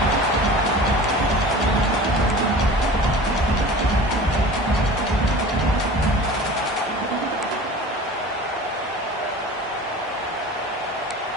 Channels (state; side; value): normal; both; correlation 0.39